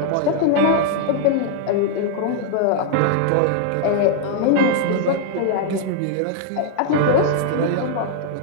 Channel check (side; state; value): both; different; correlation 0.00